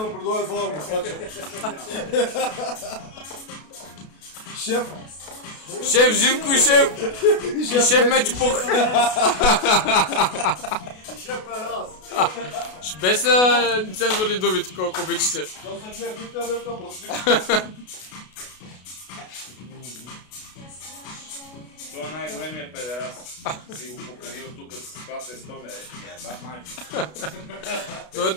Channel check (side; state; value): right; late; 32 ms